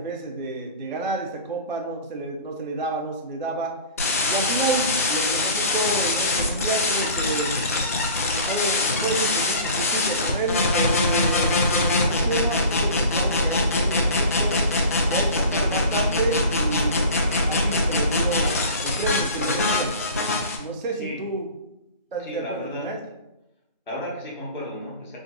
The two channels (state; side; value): inverted; both; correlation -0.39